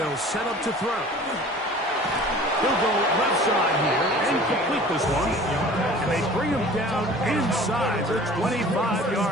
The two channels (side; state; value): both; normal; correlation 0.45